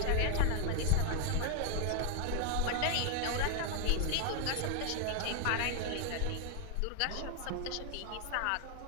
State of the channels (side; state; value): both; different; correlation 0.00